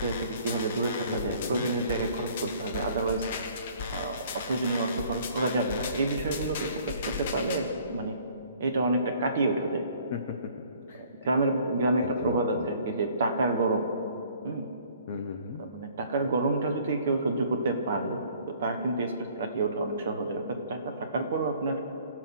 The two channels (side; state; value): both; inverted; correlation -0.56